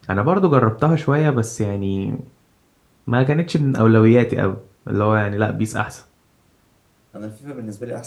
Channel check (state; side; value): identical; both; correlation 1.00